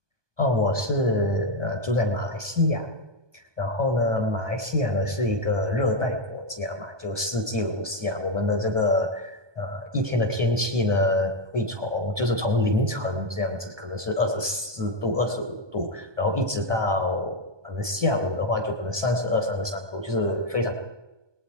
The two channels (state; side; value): late; left; 1.2 ms